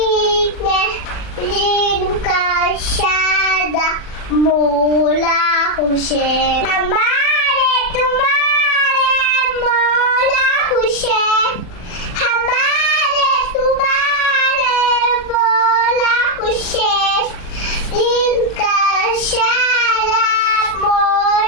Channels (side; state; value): right; late; 40 ms